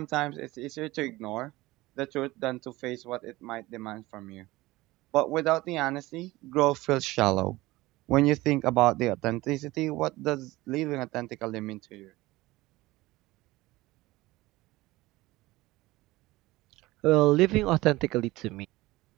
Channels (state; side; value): quieter; left; 19.2 dB